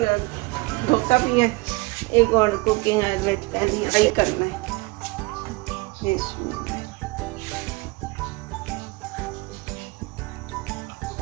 धोता भी है, एक और कुकिंग फ्राई करना है।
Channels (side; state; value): left; quieter; 24.6 dB